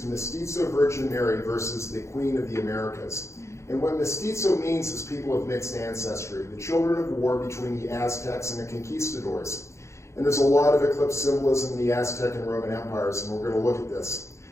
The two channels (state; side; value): late; right; 0.14 ms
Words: Mestizo Virgin Mary versus the Queen of the Americas. And what mestizo means is people of mixed ancestry, the children of war between the Aztecs and the conquistadors. And there's a lot of eclipse symbolism in the Aztec and Roman empires, and we're going to look at this.